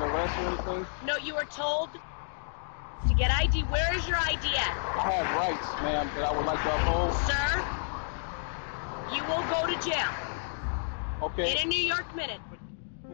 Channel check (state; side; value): silent; right; digital silence